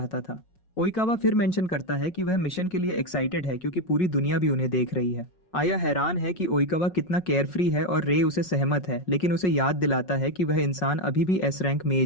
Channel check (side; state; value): right; late; 5.4 ms